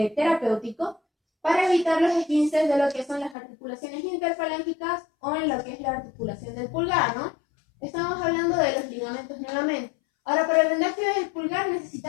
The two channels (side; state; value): right; drops out; at 3.4 s